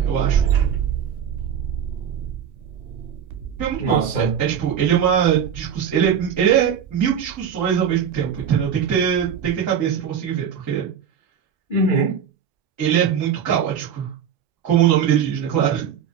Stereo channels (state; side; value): quieter; left; 8.2 dB